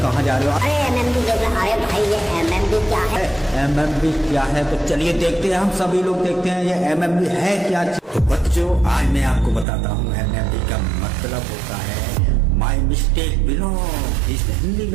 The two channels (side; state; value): left; drops out; at 9.7 s